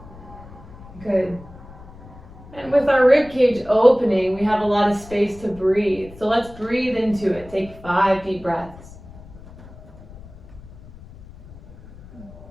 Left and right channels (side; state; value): left; noise; rumble, 19 dB below the sound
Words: Good. And with our rib cage opening, we have a lot of space to breathe. So let's breathe into it. Take 5 deep breaths.